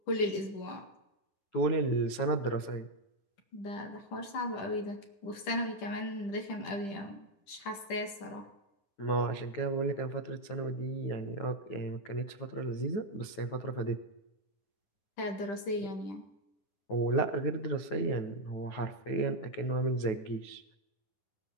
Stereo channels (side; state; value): right; late; 10 ms